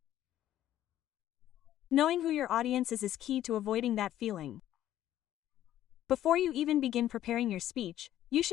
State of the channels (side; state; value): right; quieter; 12.5 dB